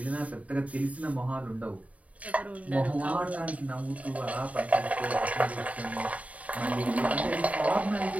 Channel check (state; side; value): late; left; 0.068 ms